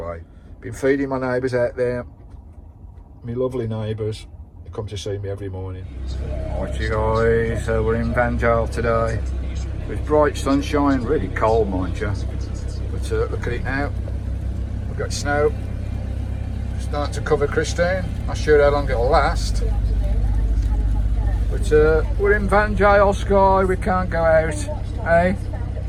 Been feeding my neighbours out there, my lovely neighbours. They come to see me every morning. Right, you guys, we're in Vanlife today with bright sunshine, really cold, mind you. But look at it now. We've got snow. Starting to cover Christine. Not sure how long it'll last. But we're in Vanlife, Skye. We can't go out. Hey,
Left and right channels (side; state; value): both; identical; correlation 1.00